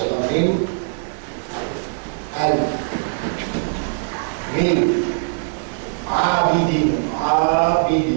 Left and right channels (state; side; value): silent; left; 58 dB below the other